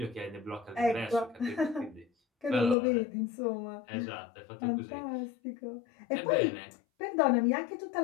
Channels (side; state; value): right; drops out; at 2.8 s